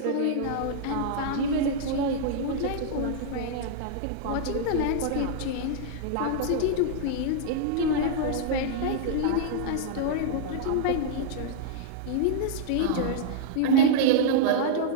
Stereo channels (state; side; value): different; both; correlation -0.02